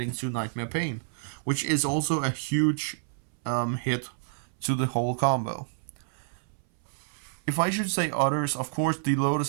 to Nightmare Pain, which is also a huge hit to the whole combo. If I should say others, of course, the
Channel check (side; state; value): left; silent; 59 dB below the other